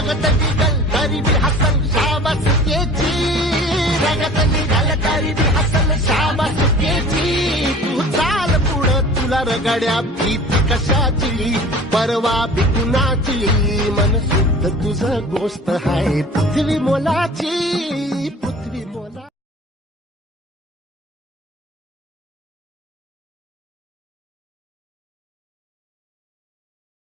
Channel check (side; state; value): both; normal; correlation 0.43